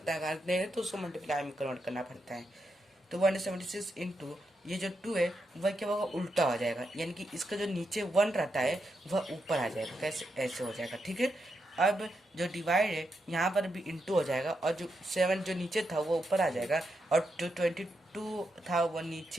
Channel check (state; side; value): normal; both; correlation 0.84